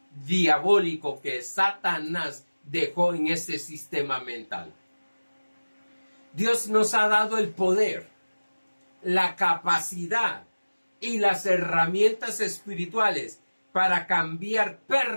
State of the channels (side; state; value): both; inverted; correlation -1.00